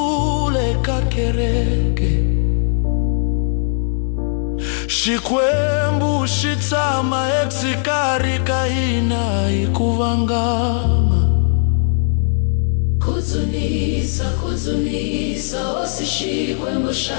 kakereke Shikwembu shitsama eksikari kaina ikuvangama Kuzunisa, kuzunisa, osishikwembu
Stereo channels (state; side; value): silent; right; digital silence